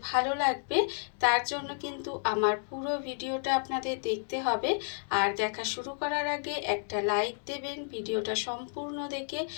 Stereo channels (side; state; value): right; silent; 57 dB below the other